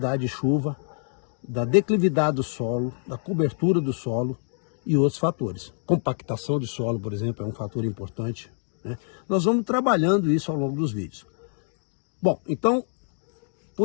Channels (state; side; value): silent; right; 61 dB below the other